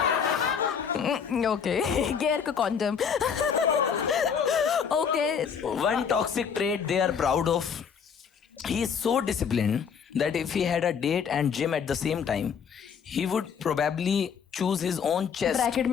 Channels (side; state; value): right; quieter; 6.9 dB